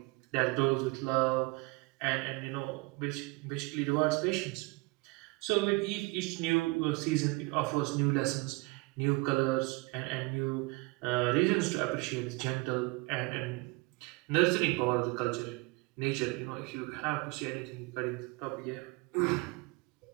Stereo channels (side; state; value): left; quieter; 25.5 dB